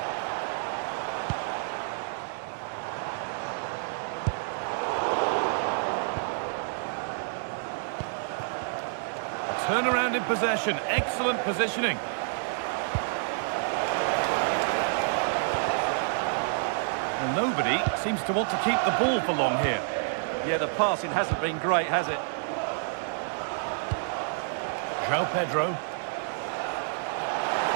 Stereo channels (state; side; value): silent; left; 59 dB below the other